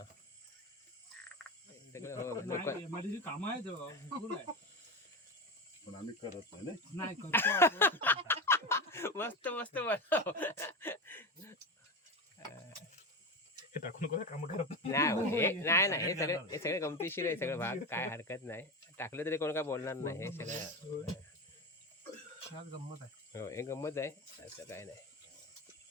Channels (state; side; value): normal; both; correlation 0.21